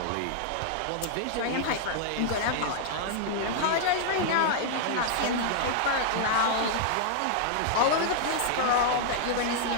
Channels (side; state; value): both; different; correlation -0.01